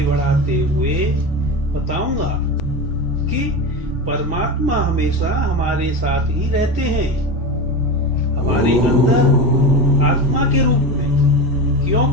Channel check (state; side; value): normal; both; correlation 0.23